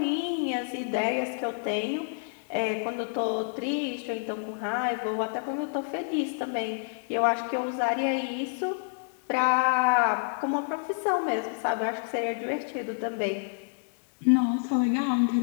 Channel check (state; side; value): silent; right; digital silence